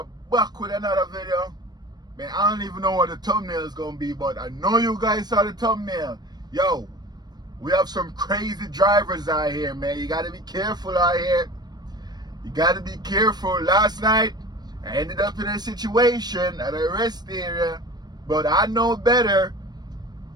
back with another video. Man, I don't even know what the thumbnail is going to be, but I know you guys saw the thumbnail. Yo, we have some crazy drivers out here, man. You got to be careful out here. You got to be careful. Last night, I ended up in a situation at a rest area, but I know better.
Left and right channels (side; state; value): left; late; 0.20 ms